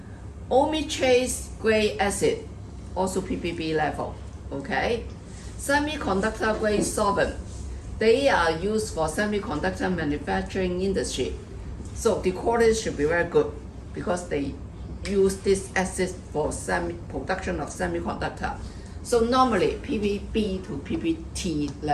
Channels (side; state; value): both; identical; correlation 1.00